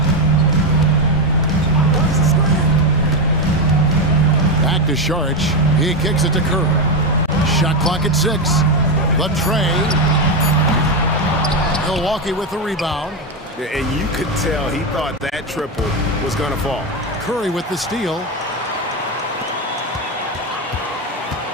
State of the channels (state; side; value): normal; both; correlation 0.10